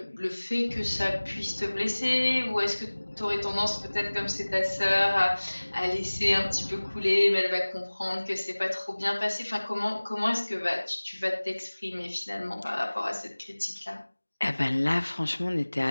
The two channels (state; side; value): inverted; both; correlation -1.00